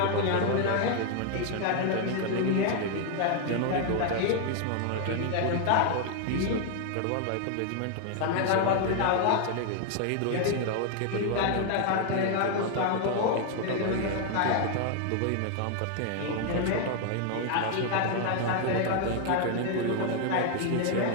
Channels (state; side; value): different; both; correlation 0.00